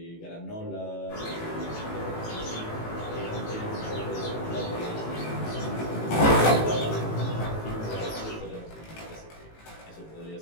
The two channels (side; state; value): right; late; 18 ms